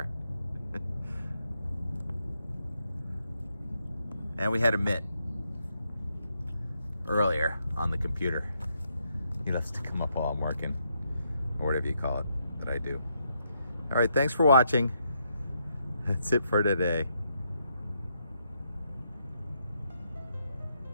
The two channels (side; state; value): both; inverted; correlation -0.78